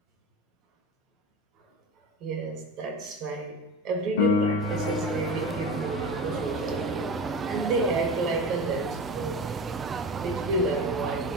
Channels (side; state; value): both; normal; correlation 0.28